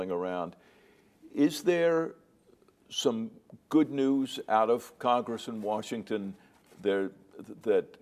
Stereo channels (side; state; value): both; identical; correlation 1.00